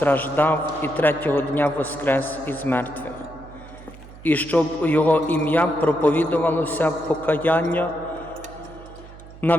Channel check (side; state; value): right; noise; hum, 18 dB below the sound